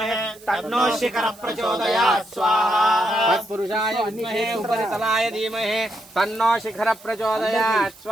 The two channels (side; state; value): right; noise; hiss, 23 dB below the sound